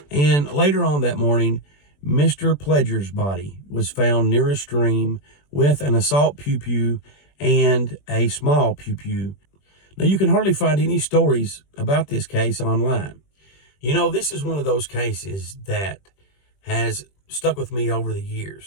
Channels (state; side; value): late; right; 21 ms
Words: And later on that morning, Mr. Pledger's body was found near a stream with an assault pew-pew and a small pew-pew. Now, you can hardly find any stories about this case online. You know, this is one of those cases that has stuck with me over the